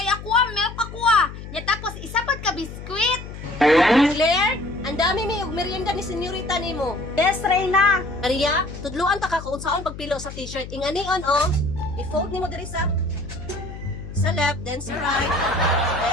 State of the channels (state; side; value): noise; left; hum, 11 dB below the sound